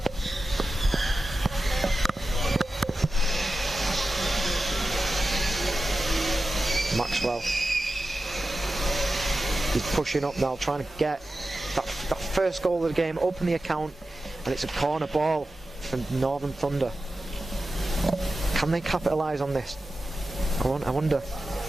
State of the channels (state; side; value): normal; both; correlation 0.93